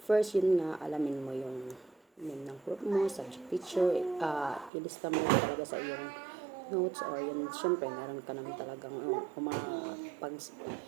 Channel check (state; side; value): drops out; left; at 4.7 s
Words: First, yun nga, alamin mo yung name ng group mo, subject teacher, ilista mo talaga sa iyong notes or yun, syempre, meron ka naman talagang pag